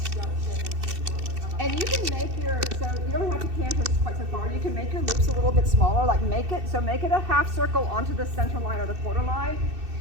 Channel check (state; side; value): late; left; 2.7 ms